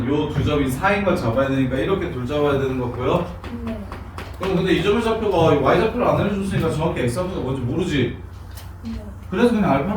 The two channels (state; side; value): identical; both; correlation 1.00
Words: 요 두 점이 4인 걸 잡아야 되니까 이렇게 둘 잡아야 되는 거 보여? 그럼 근데 이 점의 좌표가 y 좌표를 안 알려줬으니까 정확히 x 좌표가 뭔지 모르지? 그래서 그냥